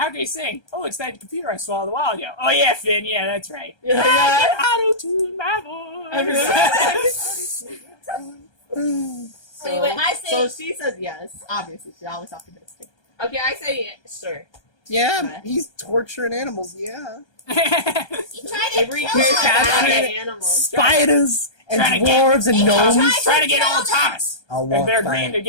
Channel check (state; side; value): late; right; 1.3 ms